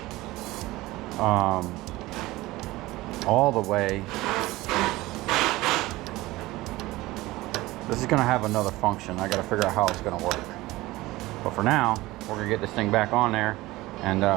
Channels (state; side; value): quieter; left; 18.9 dB